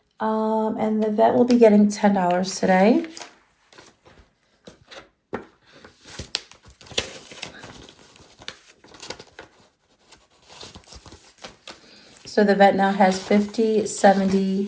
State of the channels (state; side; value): identical; both; correlation 1.00